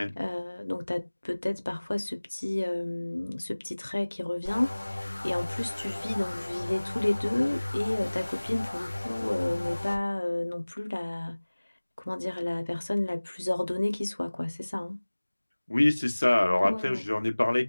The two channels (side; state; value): both; inverted; correlation -1.00